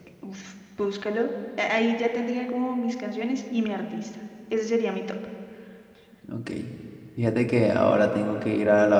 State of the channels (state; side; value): identical; both; correlation 1.00